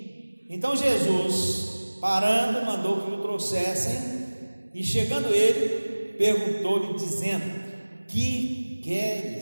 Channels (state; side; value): inverted; both; correlation -1.00